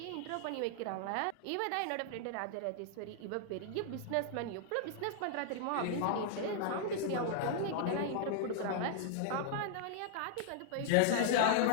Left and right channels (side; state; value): both; different; correlation 0.00